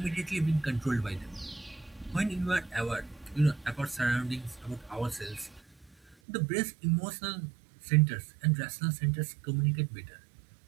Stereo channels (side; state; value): left; drops out; at 6.2 s